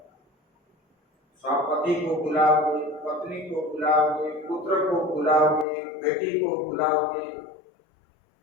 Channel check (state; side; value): drops out; right; at 5.7 s